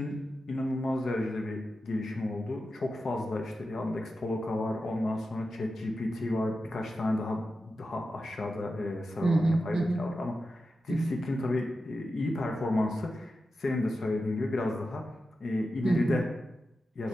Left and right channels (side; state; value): both; normal; correlation 0.91